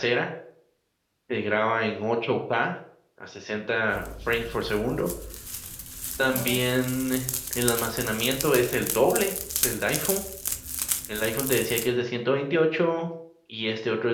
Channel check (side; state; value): both; identical; correlation 1.00